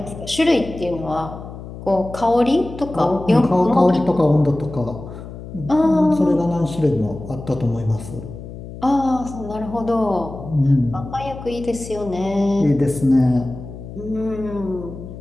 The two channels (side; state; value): left; noise; hum, 12 dB below the sound